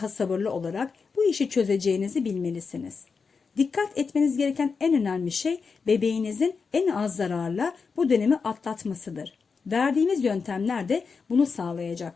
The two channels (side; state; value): right; quieter; 5.2 dB